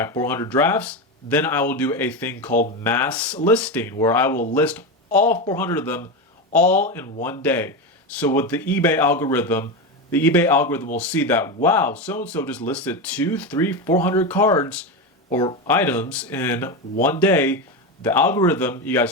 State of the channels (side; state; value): both; normal; correlation 0.16